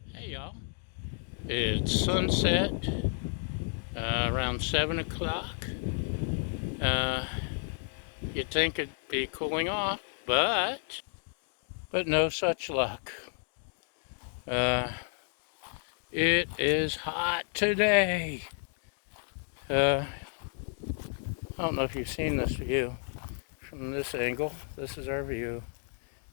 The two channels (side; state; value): right; silent; 57 dB below the other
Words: Hey y'all, it's sunset around 7 o'clock. Uh, you'd think it'd be cooling off, but no such luck. Uh, it is hot today. I don't know if you've seen this view from this angle. This is our view.